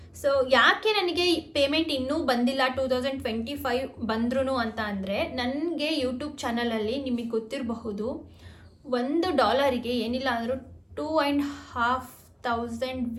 ಸೊ ಯಾಕೆ ನನಗೆ ಪೇಮೆಂಟ್ ಇನ್ನೂ ಬಂದಿಲ್ಲ 2025 ಬಂದ್ರೂ ಅಂತ ಅಂದರೆ, ನನಗೆ ಯೂಟ್ಯೂಬ್ ಚಾನಲಲ್ಲಿ ನಿಮಗೆ ಗೊತ್ತಿರಬಹುದು $1 ಏನಿಲ್ಲ ಅಂದರೂ 2,500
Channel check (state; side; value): identical; both; correlation 1.00